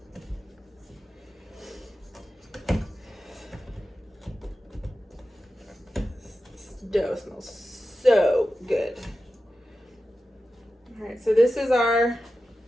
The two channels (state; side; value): normal; both; correlation 0.93